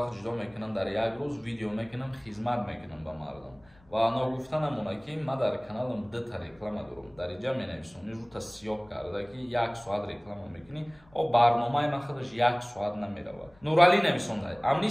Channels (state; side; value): noise; left; rumble, 30 dB below the sound